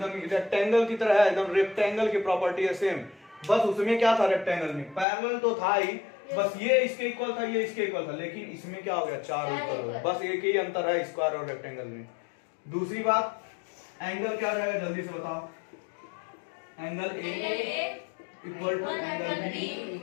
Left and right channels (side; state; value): right; drops out; at 5.1 s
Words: रेक्टेंगल की तरह है, एकदम रेक्टेंगल की प्रॉपर्टी है सेम। बस उसमें क्या था, रेक्टेंगल में पैरेलल तो था ही, बस ये इसके इक्वल था, ये इसके इक्वल था, लेकिन इसमें क्या हो गया, चारों इक्वल हो गए। बस एक ही अंतर है स्क्वायर और रेक्टेंगल में। दूसरी बात, एंगल क्या रहेगा, जल्दी से बताओ। Angle A equal to angle B